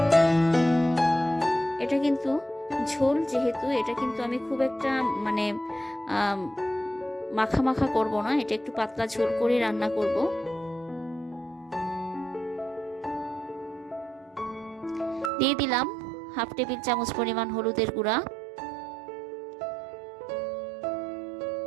এটা কিন্তু ঝোল যেহেতু, এটা কিন্তু আমি খুব একটা মাখা মাখা করব না, এটা একটু পাতলা ঝোল করে রান্না করব। দিয়ে দিলাম 1/2 টেবিল চামচ পরিমাণ হলুদের গুঁড়া,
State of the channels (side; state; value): left; drops out; at 15.3 s